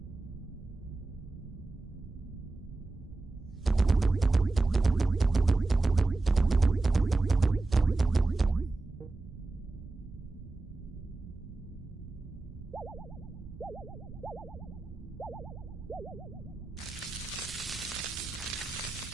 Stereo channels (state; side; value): quieter; left; 3.3 dB